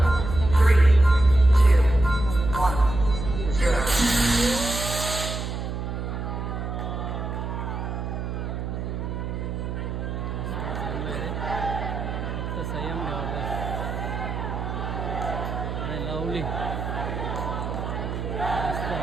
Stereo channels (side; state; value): right; noise; hum, 4 dB below the sound